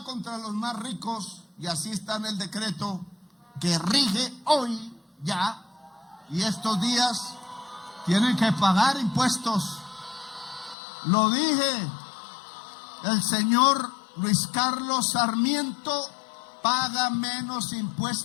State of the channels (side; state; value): right; drops out; at 10.8 s